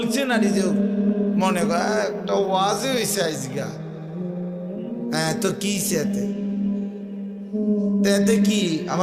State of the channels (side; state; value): both; identical; correlation 1.00